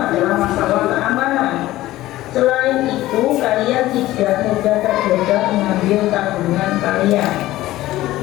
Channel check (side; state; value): right; quieter; 16.1 dB